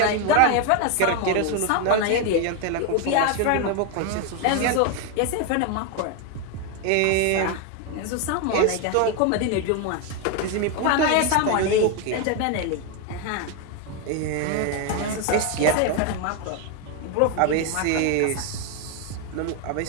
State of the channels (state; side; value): different; both; correlation 0.01